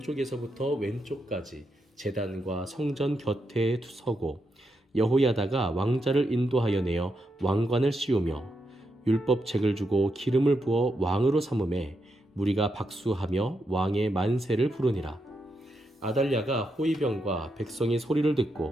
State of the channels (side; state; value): both; normal; correlation 0.83